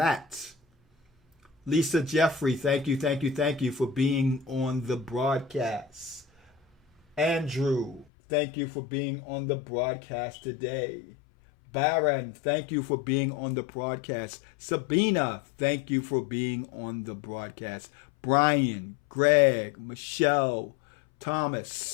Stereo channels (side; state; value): right; drops out; at 8.1 s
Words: Lisa Jeffrey, thank you, thank you, thank you for being on the broadcast. Andrew, thank you for being on the broadcast today. Baron, thank you for being on the broadcast. Sabina, thank you for being on the broadcast. Brian, Greg, Michelle,